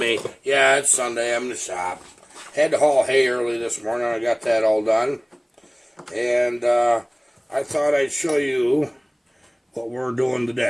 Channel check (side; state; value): both; identical; correlation 1.00